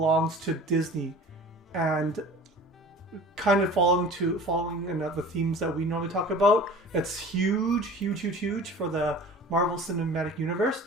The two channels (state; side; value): normal; both; correlation 0.42